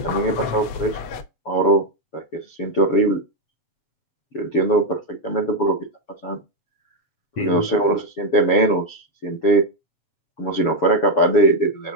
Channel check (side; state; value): right; late; 7.1 ms